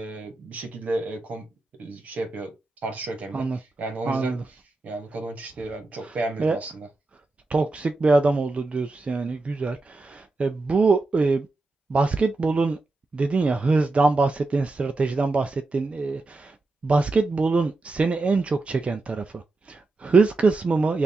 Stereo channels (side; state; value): left; quieter; 3.3 dB